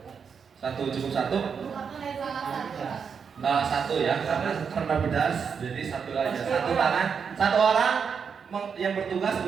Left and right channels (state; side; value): quieter; left; 6.4 dB